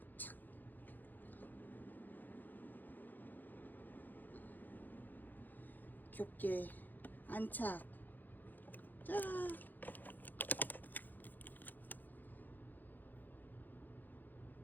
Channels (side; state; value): right; late; 0.086 ms